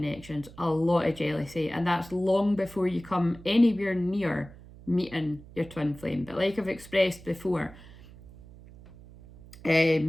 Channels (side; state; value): right; noise; hum, 19 dB below the sound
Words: a lot of jealousy, and that's long before you come anywhere near meeting your twin flame. But like I've expressed before,